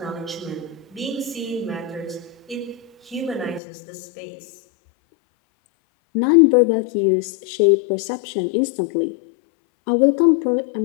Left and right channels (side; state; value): right; drops out; at 3.6 s